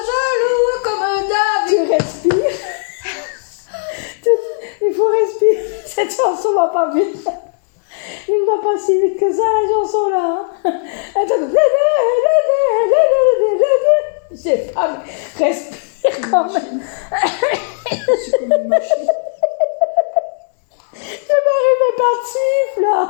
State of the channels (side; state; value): right; silent; digital silence